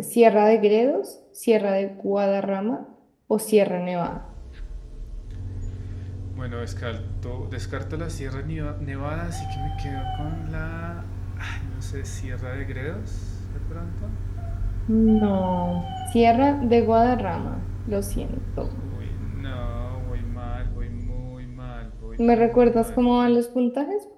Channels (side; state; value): both; identical; correlation 1.00